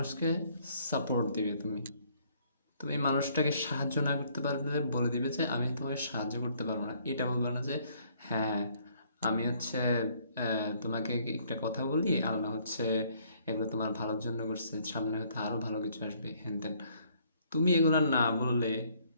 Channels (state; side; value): inverted; both; correlation -0.64